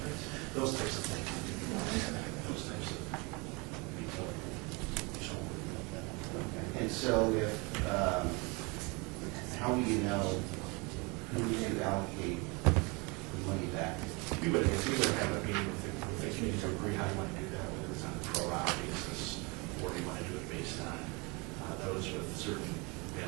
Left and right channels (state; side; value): quieter; left; 28.0 dB